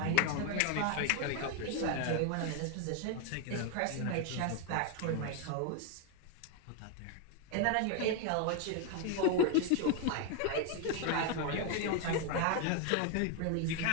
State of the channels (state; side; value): different; both; correlation 0.01